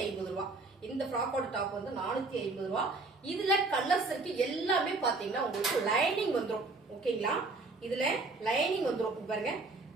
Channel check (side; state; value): left; quieter; 3.5 dB